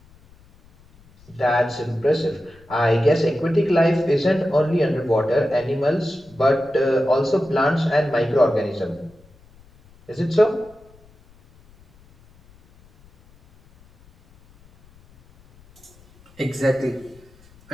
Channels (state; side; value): noise; left; rumble, 28 dB below the sound